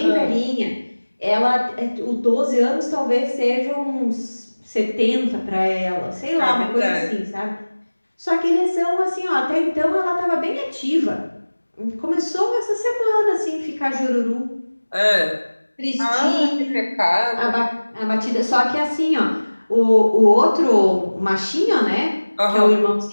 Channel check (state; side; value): inverted; both; correlation -1.00